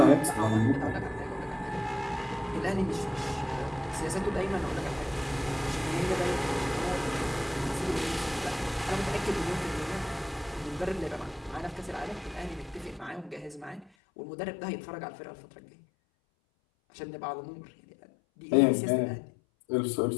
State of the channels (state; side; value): drops out; right; at 13.9 s